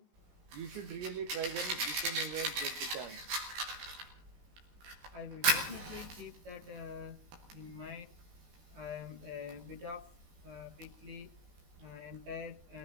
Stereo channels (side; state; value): left; late; 18 ms